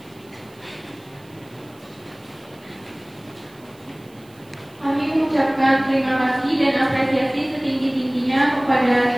Kami mengucapkan terima kasih dan apresiasi setinggi-tingginya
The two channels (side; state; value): right; noise; hiss, 29 dB below the sound